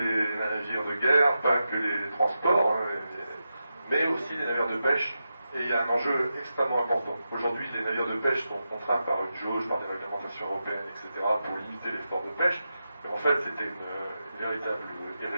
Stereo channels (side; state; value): both; inverted; correlation -0.89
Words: navires de guerre, pas que les transports, mais aussi les navires de pêche. Et il y a un enjeu extrêmement important. Aujourd'hui, les navires de pêche sont contraints par une jauge, par des réglementations européennes, etc., pour limiter l'effort de pêche. Mais en fait, c'était une véritable